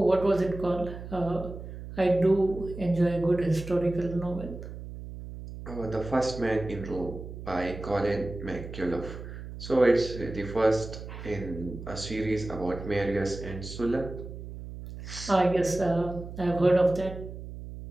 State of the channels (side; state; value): right; noise; hum, 11 dB below the sound